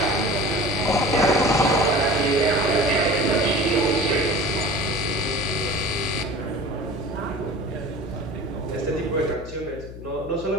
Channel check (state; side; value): noise; left; hum, 13 dB below the sound